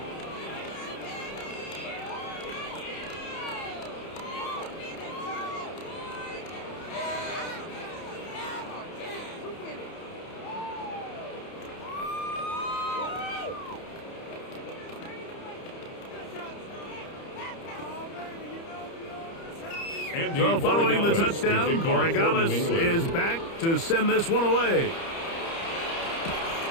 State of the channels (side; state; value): right; late; 30 ms